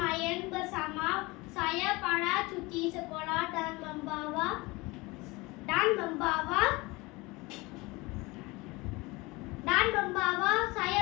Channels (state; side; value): quieter; right; 23.4 dB